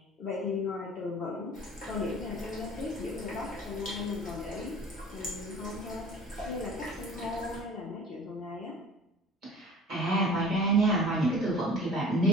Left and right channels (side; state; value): both; normal; correlation 0.44